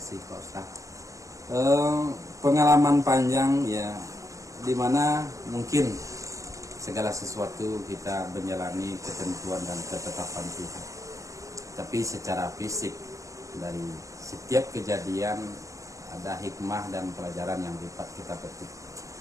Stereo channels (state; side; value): late; left; 0.16 ms